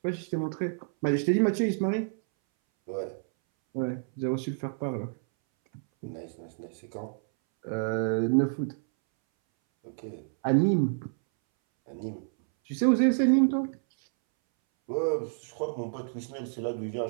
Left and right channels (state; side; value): silent; left; 59 dB below the other